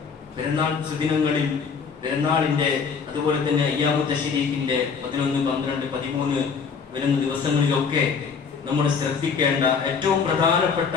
പെരുന്നാൾ സുദിനങ്ങളിൽ, പെരുന്നാളിന്റെ അതുപോലെ തന്നെ അയ്യാമു തശ്രീഖിന്റെ 11, 12, 13 വരുന്ന ദിവസങ്ങളിലൊക്കെ നമ്മൾ ശ്രദ്ധിക്കേണ്ട ഏറ്റവും പ്രധാനപ്പെട്ട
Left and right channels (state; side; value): quieter; right; 5.8 dB